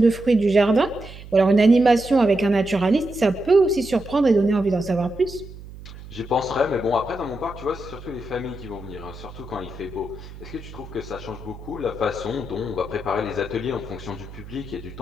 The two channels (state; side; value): noise; right; hum, 15 dB below the sound